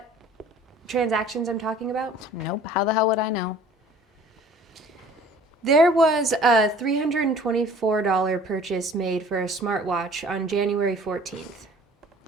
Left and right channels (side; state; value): both; normal; correlation 0.50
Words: transactions I'm talking about? Nope, how the hell would I know? There was a $324 purchase made for a smartwatch on January 14th.